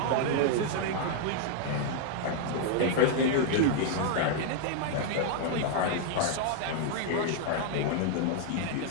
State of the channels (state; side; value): different; both; correlation 0.00